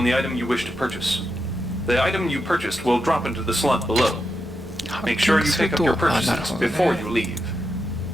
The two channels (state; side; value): normal; both; correlation 0.86